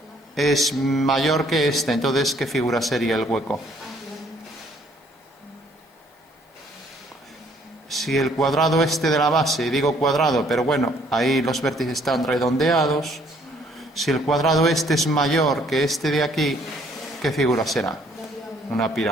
es mayor que este. Entonces, ¿qué figura sería el hueco? Si el cuadrado este de la base, digo cuadrado, pero bueno, ahí los vértices están redondeados. Si el cuadrado este es mayor que este de aquí, ¿qué figura será? Una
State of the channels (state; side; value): normal; both; correlation 0.63